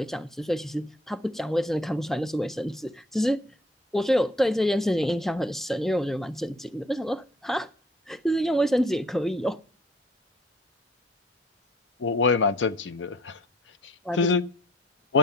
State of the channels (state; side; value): normal; both; correlation 0.59